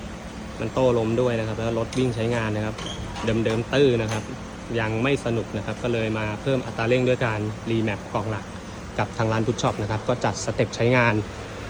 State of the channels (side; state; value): both; identical; correlation 1.00